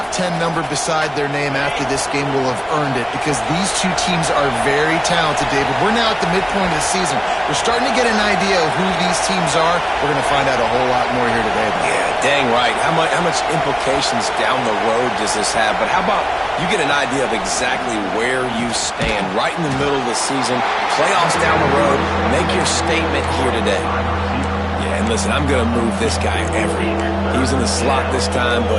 10 number beside their name after this game will have earned it, because these two teams are very talented, David. We're now at the midpoint of the season. We're starting to get an idea of who these teams are. We're going to find out a whole lot more here today. Yeah, dang right. How much implications down the road does this have? But how about you get an idea of exactly where you stand right in the middle of the season, playoffs down the road, make your statement here today. Yeah, and listen, I'm going to move this guy everywhere. He was in the slot this time,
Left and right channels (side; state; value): both; identical; correlation 1.00